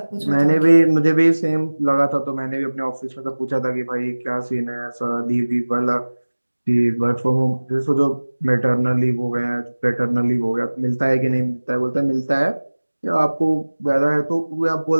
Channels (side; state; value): both; inverted; correlation -1.00